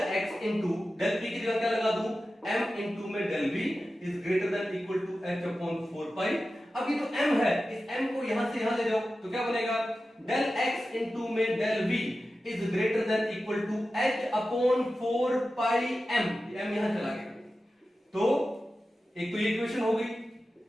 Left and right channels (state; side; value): normal; both; correlation 0.93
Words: x into del p की जगह क्या लगा दूं, m into में del v is greater than equal to h upon 4 pi। अब ये जो m है, इस m को यहां से यहां ले जाओ तो क्या बनेगा, del x into में del v is greater than equal to h upon 4 pi m, m यहां चला गया। तो एक तो ये इक्वेशन हो गई,